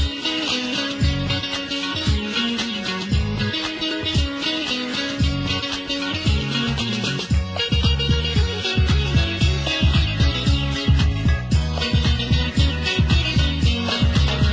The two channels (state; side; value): identical; both; correlation 1.00